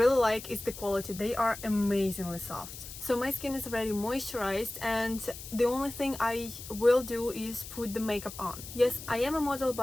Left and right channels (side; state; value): left; noise; hiss, 12 dB below the sound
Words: like is the quality. They are amazingly soft. So my skin is already moisturized and the only thing I will do is put the makeup on. Yes, I am a model,